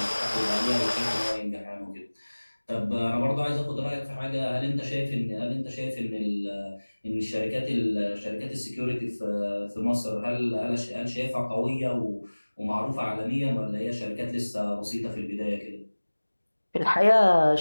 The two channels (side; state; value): both; inverted; correlation -1.00